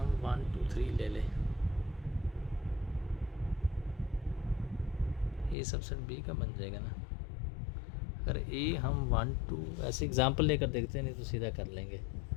1 2 3 ले लें। ए सबसेट बी का बन जाएगा ना। अगर ए हम 1 2 ऐसे एग्जांपल लेकर देखते हैं, नहीं तो सीधा कर लेंगे।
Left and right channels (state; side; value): drops out; right; at 5.6 s